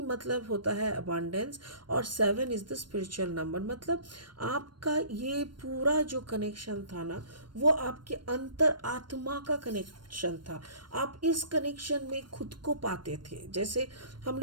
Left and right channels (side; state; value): left; late; 0.72 ms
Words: मतलब होता है अबांडेंस, और 7 इज़ द स्पिरिचुअल नंबर। मतलब आपका ये पूरा जो कनेक्शन था ना, वो आपके अंतर आत्मा का कनेक्शन था। आप इस कनेक्शन में खुद को पाते थे। जैसे हम